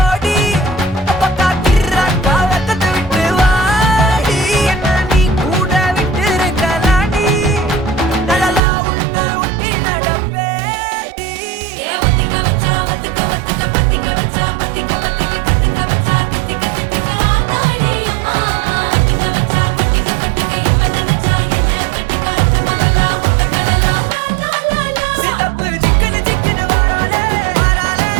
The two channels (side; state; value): left; drops out; at 8.6 s